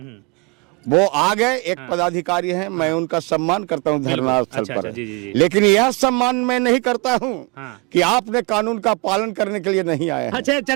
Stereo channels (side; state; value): left; quieter; 29.3 dB